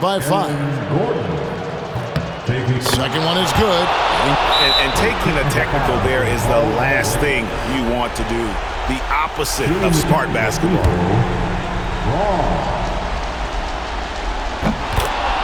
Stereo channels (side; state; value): both; identical; correlation 1.00